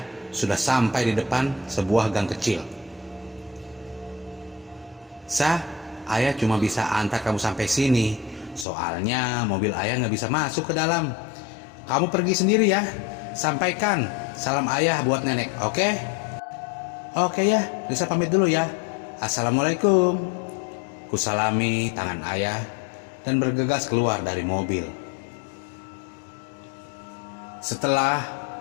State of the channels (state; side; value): drops out; right; at 8.7 s